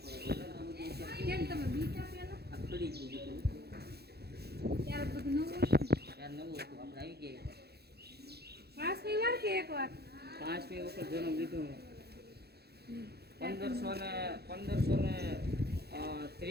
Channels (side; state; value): left; late; 0.47 ms